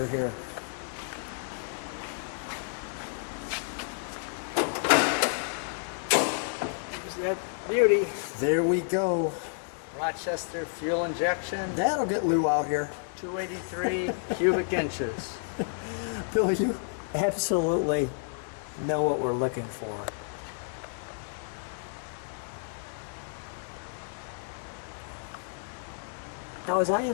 here. There's that beauty. There we go. Rochester fuel injection, That'll get Lou out here. 283 cubic inches. Bill, you absolutely know what we're looking for. Now, as I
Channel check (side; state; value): right; silent; digital silence